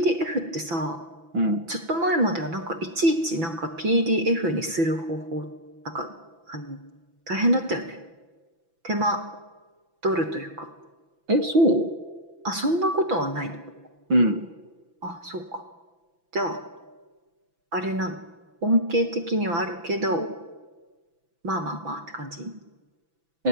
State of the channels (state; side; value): late; left; 6.0 ms